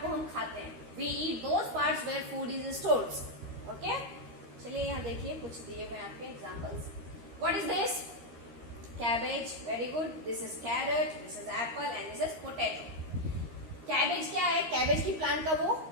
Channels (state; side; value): late; left; 13 ms